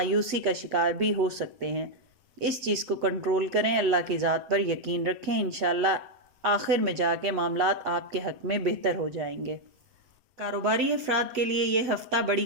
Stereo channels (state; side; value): late; left; 7.9 ms